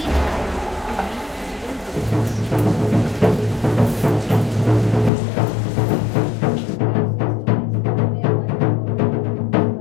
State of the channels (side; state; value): right; drops out; at 5.1 s